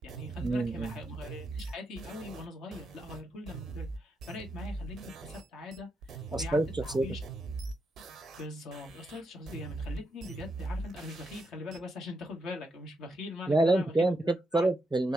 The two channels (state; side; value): normal; both; correlation 0.83